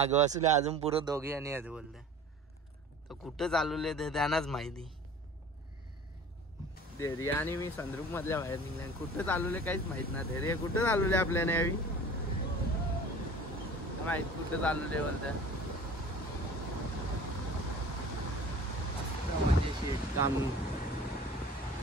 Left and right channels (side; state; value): both; normal; correlation 0.43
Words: असले अजून पुरं दोघे आणि आहेत बोलते. तर कुठं चालवले ते त्यांनाच माहिती. धैर्य आणि मी संद्रुप मधल्या बाहेर निघले. कुठं चालवले काहीच माहित ना. धैर्य कुठं चालवले आपल्याला यावी माहित कुठं चालवले बोलत. म्हणजे शेत काम